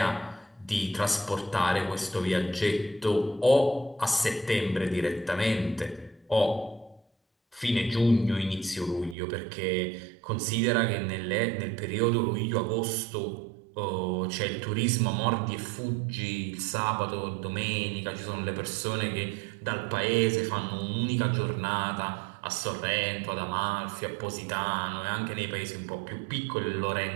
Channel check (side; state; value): left; drops out; at 9.2 s